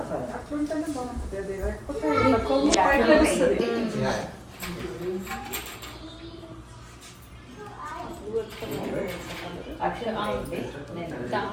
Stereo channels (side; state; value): both; identical; correlation 1.00